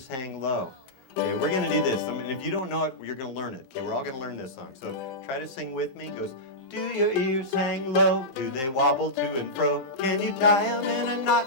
Hang Low? Okay, we're going to do this. I mean, if you don't know it, you're going to learn it. Okay, we're all going to learn this song. So try to sing with me. It goes, do your ears hang low? Do they wobble to and fro? Can you tie them in a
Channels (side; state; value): both; normal; correlation -0.12